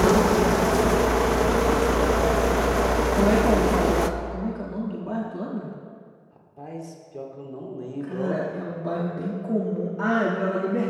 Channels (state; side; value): identical; both; correlation 1.00